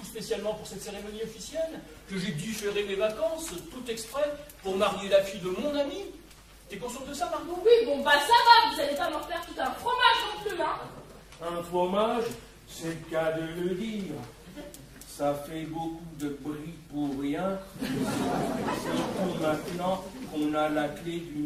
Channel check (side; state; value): both; identical; correlation 1.00